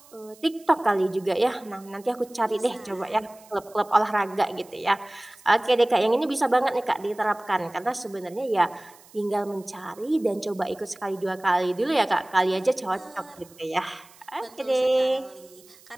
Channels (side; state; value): right; noise; hiss, 25 dB below the sound